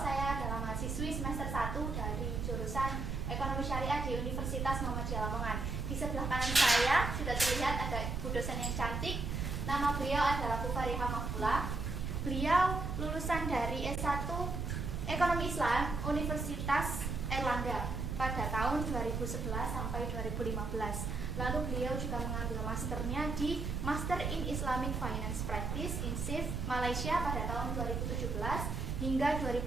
Saya adalah mahasiswi semester 1 dari jurusan Ekonomi Syariah di Universitas Muhammadiyah Lamongan. Di sebelah kanan saya sudah terlihat ada Bu dosen yang cantik. Nama beliau adalah Bu Farihah Mahfula. Beliau lulusan dari S1 Ekonomi Islam Universitas Erlangga pada tahun 2011 sampai 2015. Lalu beliau juga mengambil masternya di Master in Islamic Finance Practice in SIF Malaysia pada tahun 2017 hingga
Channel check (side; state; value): right; noise; rumble, 2 dB below the sound